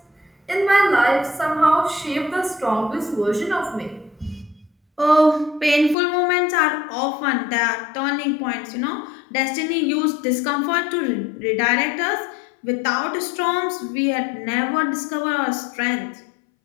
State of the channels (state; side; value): drops out; right; at 6.0 s